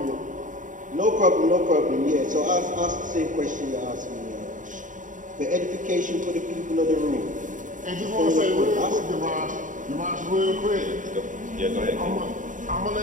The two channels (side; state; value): left; late; 0.37 ms